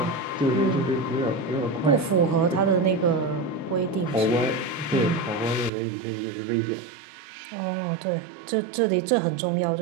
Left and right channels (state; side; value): drops out; left; at 5.7 s